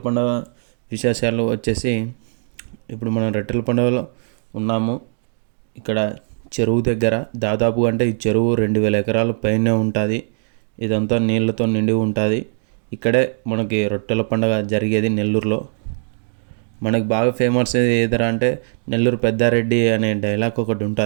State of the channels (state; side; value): silent; left; digital silence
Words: పండుగ విశేషాలు వచ్చేసి, ఇప్పుడు మనం రొట్టెల పండుగలో ఉన్నాము. ఇక్కడ చెరువు దగ్గర దాదాపు అంటే ఈ చెరువు 2000 ఎకరాల పైనే ఉంటుంది. ఇదంతా నీళ్ళతో నిండి ఉంటుంది. ఇక్కడే మనకి రొట్టెల పండుగ జరిగేది నెల్లూరులో. మనకు బాగా ఫేమస్ ఏదరా అంటే నెల్లూరు పెద్దారెడ్డి అనే డైలాగ్ ఒకటి